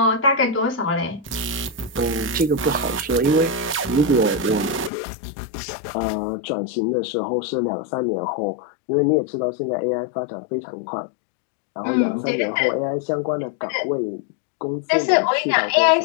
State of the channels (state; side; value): drops out; right; at 4.9 s